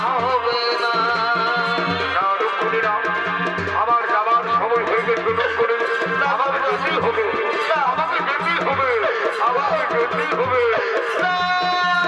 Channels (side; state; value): both; identical; correlation 1.00